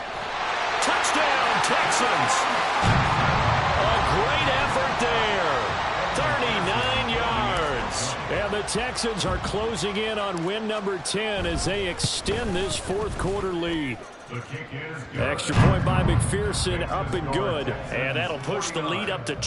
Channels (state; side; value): identical; both; correlation 1.00